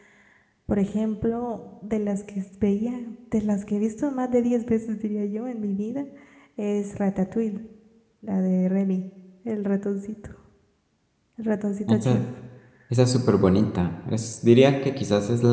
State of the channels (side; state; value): both; identical; correlation 1.00